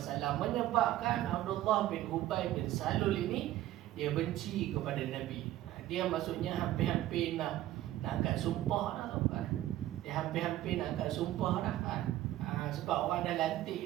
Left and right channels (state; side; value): quieter; left; 14.3 dB